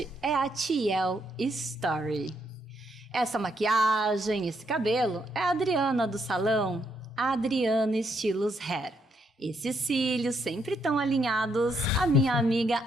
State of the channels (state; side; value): normal; both; correlation 0.76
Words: é a Tiel Story. Essa maquiagem, esse cabelo é a Adriana do salão, a Adriana Estilos Hair. Esses cílios sempre tão alinhados, a minha amiga